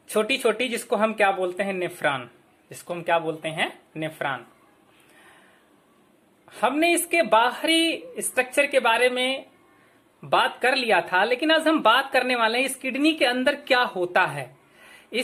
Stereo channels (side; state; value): both; identical; correlation 1.00